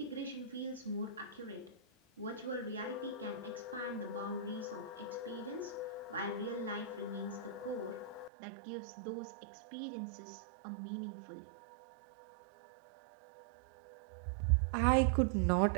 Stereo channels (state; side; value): drops out; left; at 8.3 s